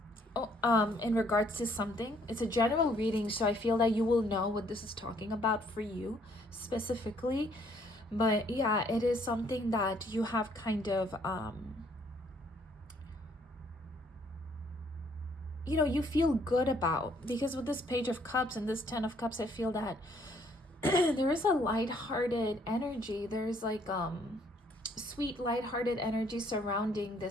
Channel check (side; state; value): both; normal; correlation 0.65